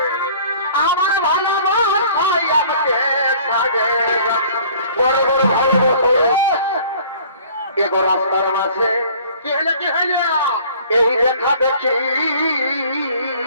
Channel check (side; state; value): both; inverted; correlation -0.51